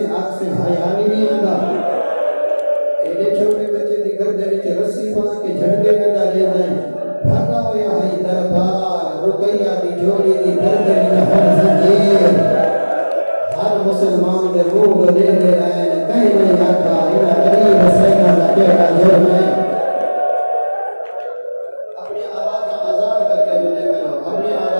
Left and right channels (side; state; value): both; inverted; correlation -1.00